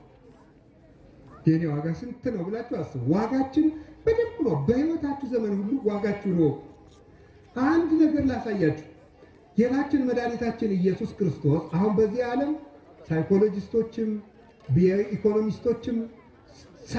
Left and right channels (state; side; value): identical; both; correlation 1.00